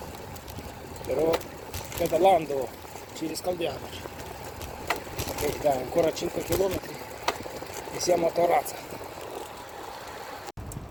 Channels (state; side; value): identical; both; correlation 1.00